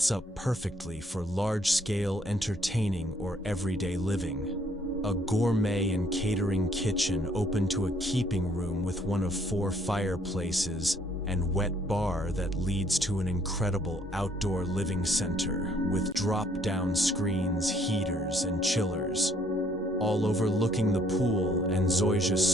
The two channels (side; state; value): both; normal; correlation 0.65